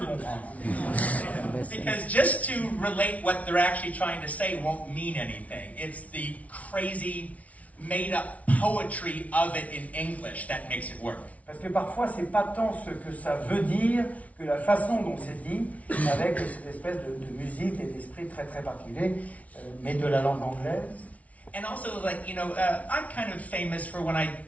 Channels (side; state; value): right; late; 0.068 ms